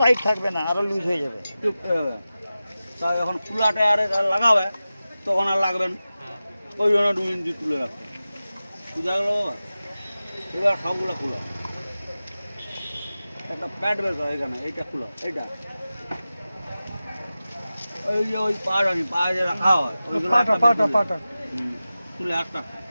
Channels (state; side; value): inverted; both; correlation -0.95